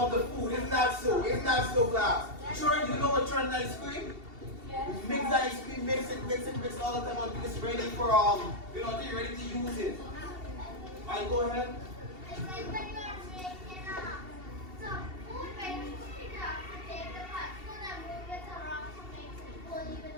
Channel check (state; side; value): late; left; 2.7 ms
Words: the food. Isn't that so? Isn't that so, class? Churn, you know what churn is ice cream? You mix the ice cream, mix it all the time until it's ready for until you're ready to use it. Alright, go ahead. It's like when you're making some food, when you're cooking it up to take the particle and move it around to make it full even